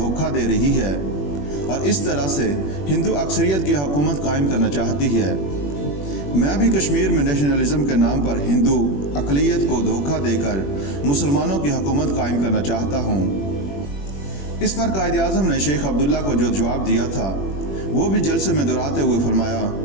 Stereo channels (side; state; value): right; late; 21 ms